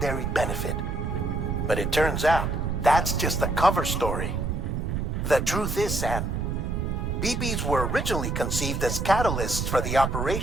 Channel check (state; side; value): noise; right; rumble, 1 dB below the sound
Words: benefit. But it turns out, that's just a cover story. The truth is, Sam, BBs were originally conceived as catalysts for the